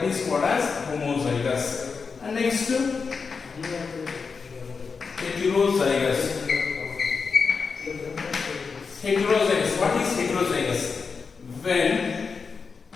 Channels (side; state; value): right; quieter; 5.2 dB